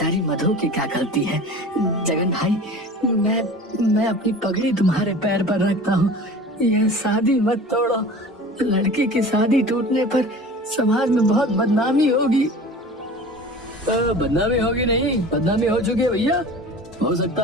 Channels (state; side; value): normal; both; correlation 0.39